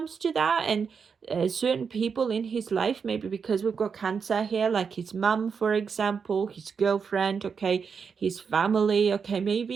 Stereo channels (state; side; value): quieter; left; 6.0 dB